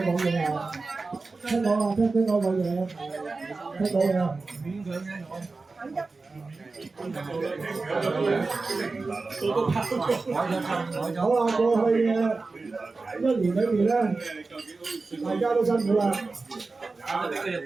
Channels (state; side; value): quieter; left; 3.8 dB